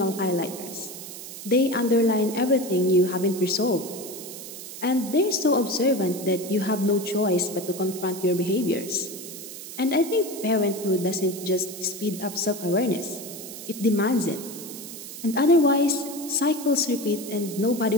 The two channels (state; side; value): noise; right; hiss, 11 dB below the sound